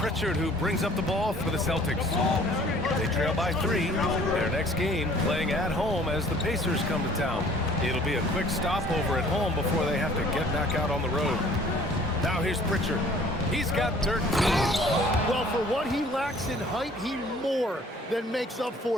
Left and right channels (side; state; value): both; normal; correlation 0.54